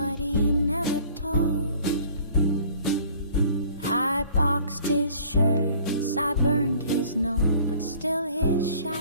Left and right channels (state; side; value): inverted; both; correlation -0.52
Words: he never told. I boxed his shirts, I burned his note, but still his